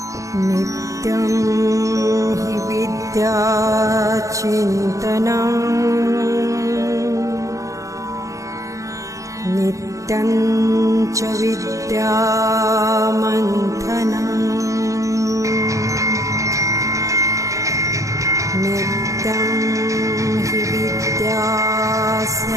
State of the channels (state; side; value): late; left; 0.16 ms